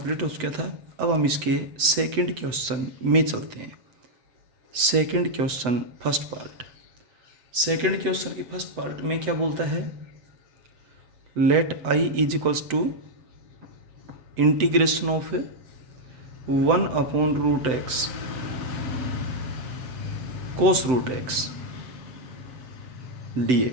हो चुका था। अब हम इसके सेकंड क्वेश्चन में चलते हैं। Second question first part. Second question की फर्स्ट पार्ट में क्या बोलता है? Let I is equals to integration of 1/√x cos root x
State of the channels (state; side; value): late; left; 7.9 ms